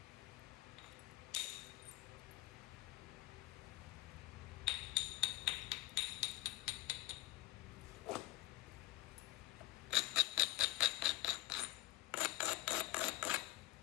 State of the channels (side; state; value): right; quieter; 17.8 dB